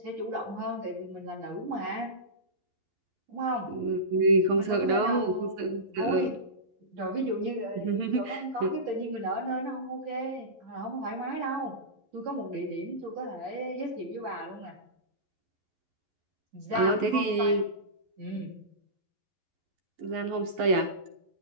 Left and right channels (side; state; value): left; late; 11 ms